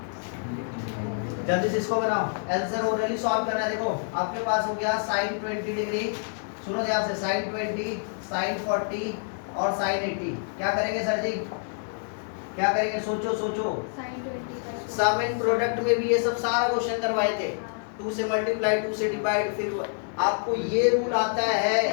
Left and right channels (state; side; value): silent; right; digital silence